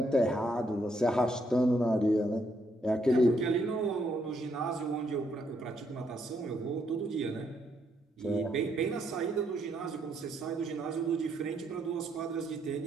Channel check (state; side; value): normal; both; correlation 0.74